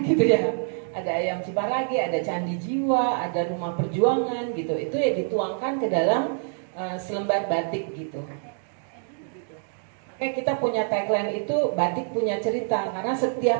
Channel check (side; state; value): left; silent; digital silence